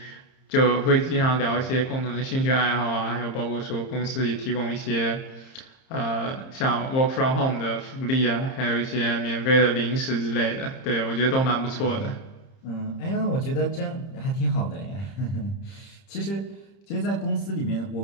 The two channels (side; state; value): right; late; 30 ms